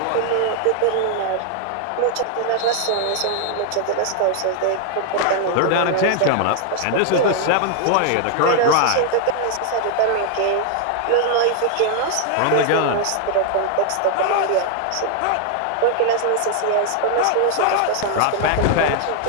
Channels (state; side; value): different; both; correlation 0.00